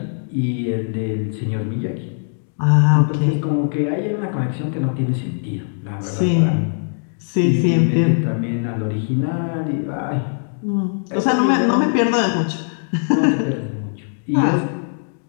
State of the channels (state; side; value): silent; right; digital silence